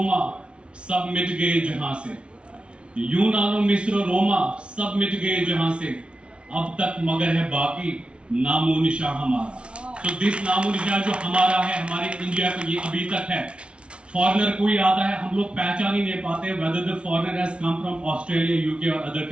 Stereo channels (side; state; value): left; late; 0.059 ms